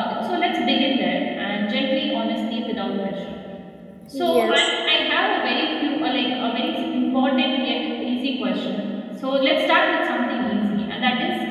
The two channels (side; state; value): both; identical; correlation 1.00